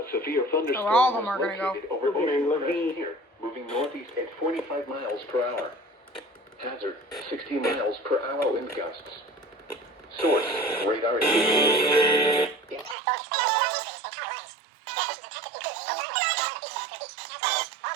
severe thunderstorm all of them was are gonna go. located over Ocean Crest here, moving northeast at 45 miles per hour. Hazard, 60 miles per hour wind gusts. Source, radar indicators.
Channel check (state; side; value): drops out; left; at 13.0 s